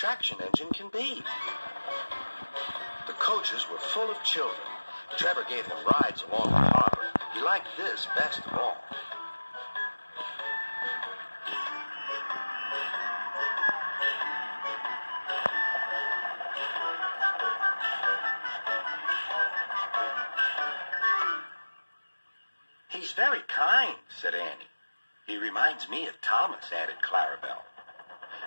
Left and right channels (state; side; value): inverted; both; correlation -1.00